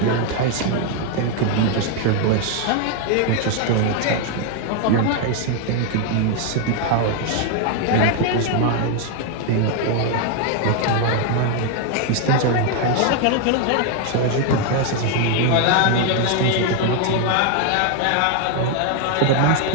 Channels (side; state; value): both; different; correlation 0.01